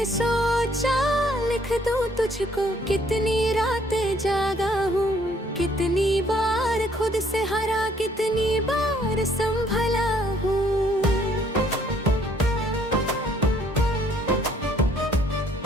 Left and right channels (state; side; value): normal; both; correlation 0.64